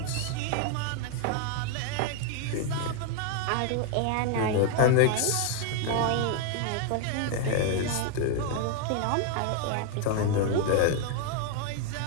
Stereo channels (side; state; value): both; different; correlation 0.00